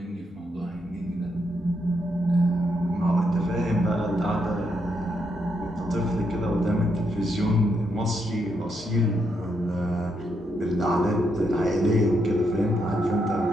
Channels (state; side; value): normal; both; correlation 0.79